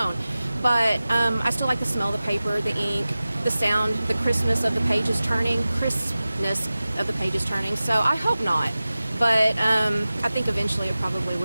But I still like the smell of the paper, the ink, the sound, the crispness of the pages turning, so I hope not. But I think eventually it probably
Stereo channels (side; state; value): both; inverted; correlation -0.96